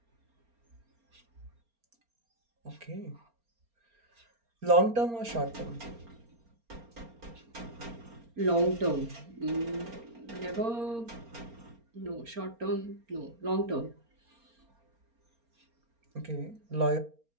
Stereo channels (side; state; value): left; late; 4.3 ms